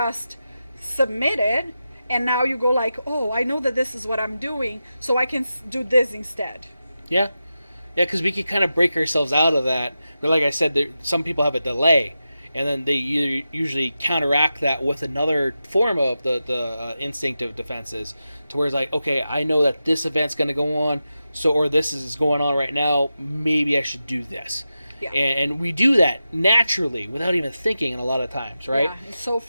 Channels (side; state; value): both; inverted; correlation -0.91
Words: submitted, and now you go like, oh, I know that this is what I'm doing, so I can do this instead. Yeah, because we can kind of break ourselves out of that. But like I said, some people have a delay, and then they usually counteract that with another form of the instinctive defenses, to where it's like, okay, I know that this event's going to go on, or this is going on right now, maybe I should do this. Yeah. And we do that naturally without even thinking a lot of times, right? Yeah, it's so